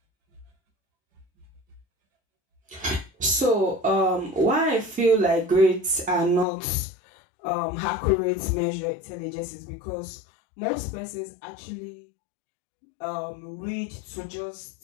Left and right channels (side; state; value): right; drops out; at 6.5 s